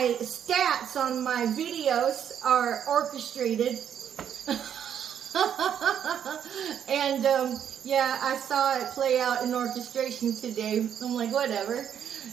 stats on my videos are orchestrated. And yeah, I saw it play out in orchestration today. I'm like, whatever.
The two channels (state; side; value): quieter; left; 9.0 dB